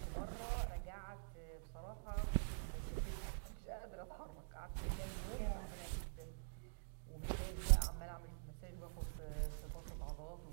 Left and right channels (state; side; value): silent; left; digital silence